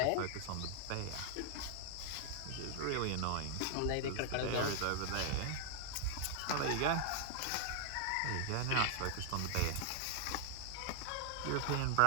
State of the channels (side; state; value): both; different; correlation -0.01